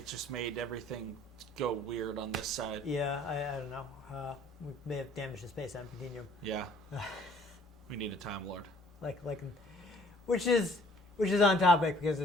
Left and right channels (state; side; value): normal; both; correlation 0.57